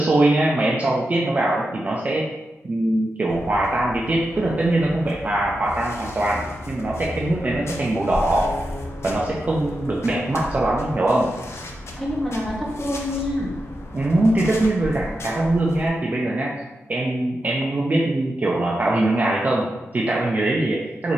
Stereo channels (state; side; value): normal; both; correlation 0.88